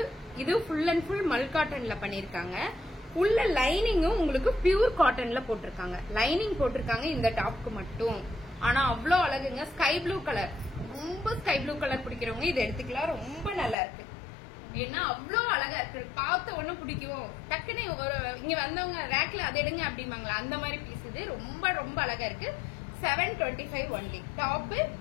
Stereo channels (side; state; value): right; drops out; at 13.8 s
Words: இது ஃபுல் அண்ட் ஃபுல் மல் காட்டன்ல பண்ணிருக்காங்க. உள்ள லைனிங்கும் உங்களுக்கு பியூர் காட்டன்ல போட்டிருக்காங்க. லைனிங் போட்டிருக்காங்க இந்த டாப்க்கு மட்டும். ஆனா அவ்வளோ அழகுங்க. ஸ்கை ப்ளூ கலர், ரொம்ப ஸ்கை ப்ளூ கலர் பிடிக்கிறவங்க இதை எடுத்துக்கலாம். ரொம்ப நல்லா இருக்கு. ஏன்னா அவ்வளோ அழகா இருக்கு. பார்த்த ஒண்ணு பிடிக்கும். டக்குன்னு இங்க வந்தவங்க ரேக்ல அதை எடுங்க அப்படிம்பாங்களா, அந்த மாதிரி பீஸ் இது. ரொம்ப ரொம்ப அழகா இருக்கு. 725 only. Top